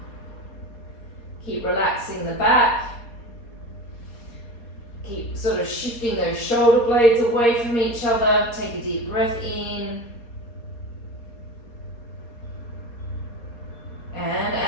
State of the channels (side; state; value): right; late; 4.3 ms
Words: Keep relaxing the back. Keep sort of shifting those shoulder blades away from each other. Take a deep breath in. And